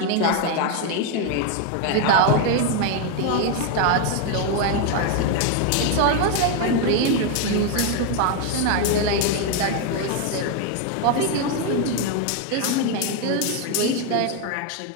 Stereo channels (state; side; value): different; both; correlation 0.01